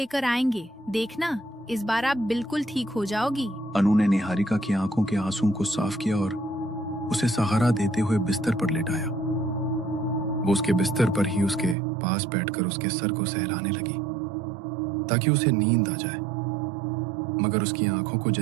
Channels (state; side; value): drops out; left; at 11.8 s